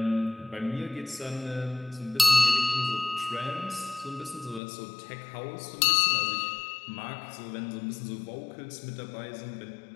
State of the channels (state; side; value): drops out; right; at 4.6 s